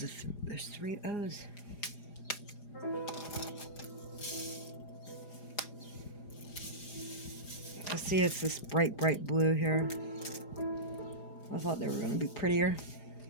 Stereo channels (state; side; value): late; right; 4.9 ms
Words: 3 O's. I see it's this bright blue here. I thought they were going to be prettier.